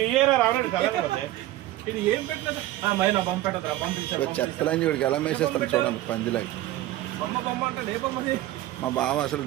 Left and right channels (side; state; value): left; quieter; 15.4 dB